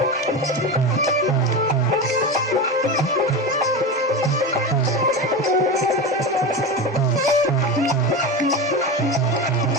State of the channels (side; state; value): both; normal; correlation 0.22